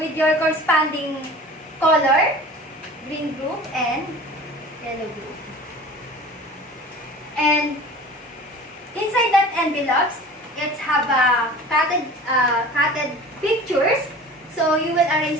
your corresponding color, green group and yellow group. And inside that envelopes, it have cutted pictures. So you will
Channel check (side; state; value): both; normal; correlation 0.41